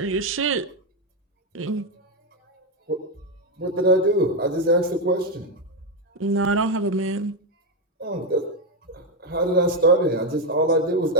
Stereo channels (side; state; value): both; normal; correlation 0.06